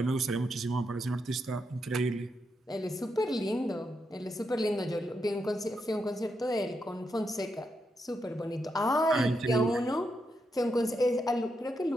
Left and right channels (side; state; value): both; normal; correlation 0.83